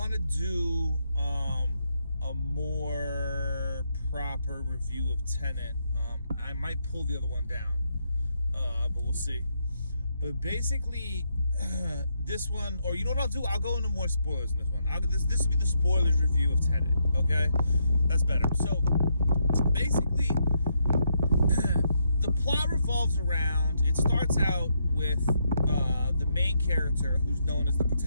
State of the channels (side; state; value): both; inverted; correlation -0.78